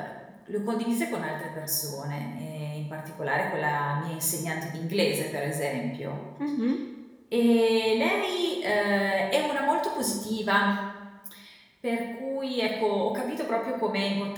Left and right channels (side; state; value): both; identical; correlation 1.00